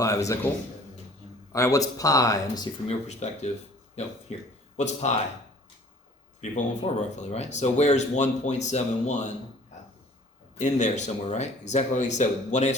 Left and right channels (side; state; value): both; normal; correlation 0.52